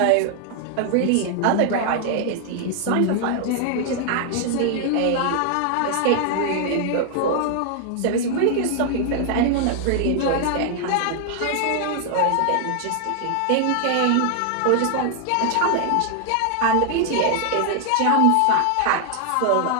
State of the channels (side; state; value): both; different; correlation 0.00